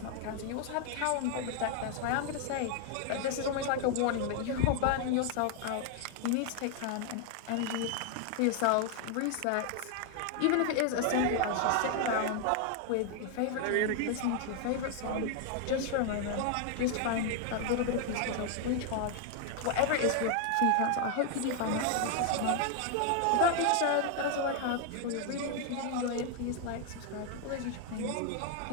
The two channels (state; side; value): different; both; correlation 0.00